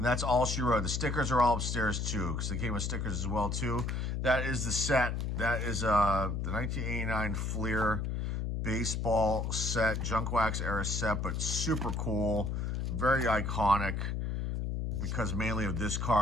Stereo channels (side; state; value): left; noise; hum, 1 dB below the sound